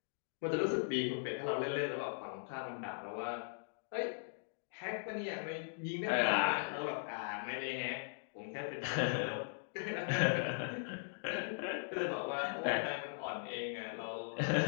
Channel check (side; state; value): right; silent; digital silence